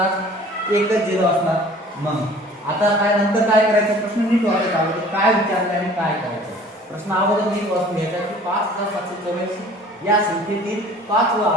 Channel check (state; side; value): normal; both; correlation 0.49